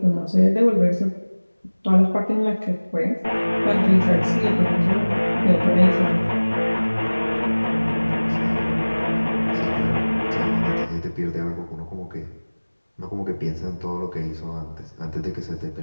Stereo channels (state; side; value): inverted; both; correlation -1.00